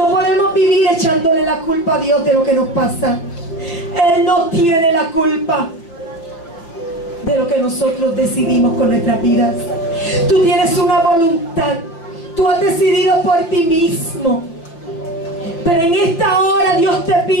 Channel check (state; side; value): late; right; 5.9 ms